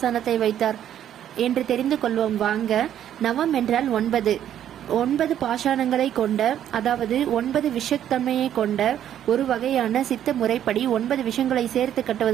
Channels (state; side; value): quieter; left; 10.6 dB